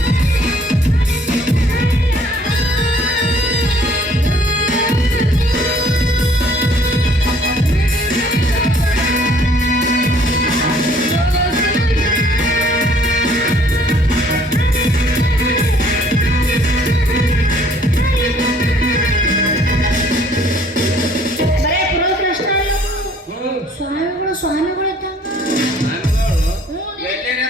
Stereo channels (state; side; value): normal; both; correlation 0.59